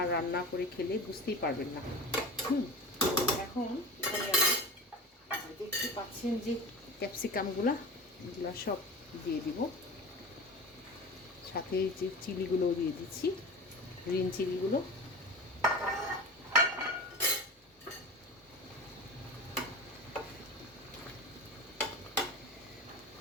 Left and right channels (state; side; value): normal; both; correlation 0.32